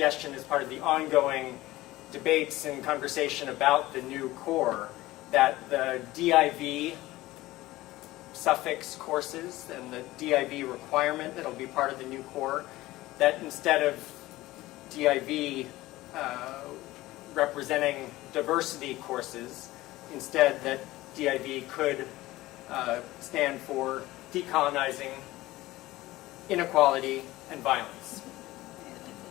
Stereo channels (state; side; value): quieter; right; 17.7 dB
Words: as part of the ongoing debates and conversation about the new core, that the DIV suffix courses and the DIV requirement that'll be part of the new core, that instead of DIV representing diversity courses, instead that DIV could stand for decolonizing inequality and violence.